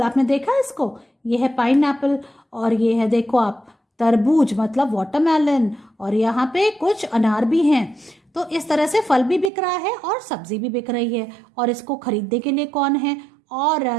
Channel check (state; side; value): drops out; left; at 9.5 s